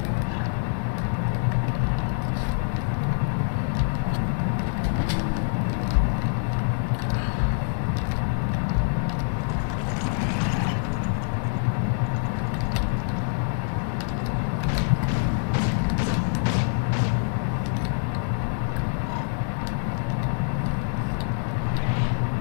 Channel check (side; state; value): right; silent; digital silence